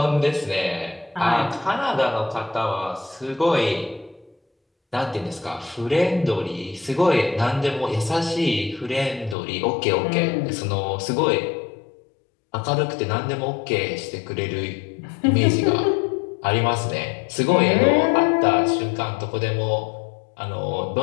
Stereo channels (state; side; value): drops out; right; at 9.3 s